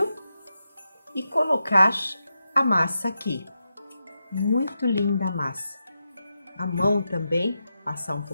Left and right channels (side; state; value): both; inverted; correlation -0.88